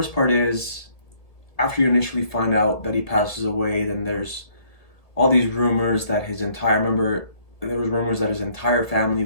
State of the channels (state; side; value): late; right; 1.7 ms